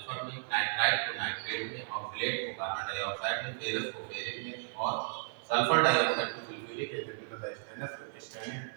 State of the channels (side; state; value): left; silent; 55 dB below the other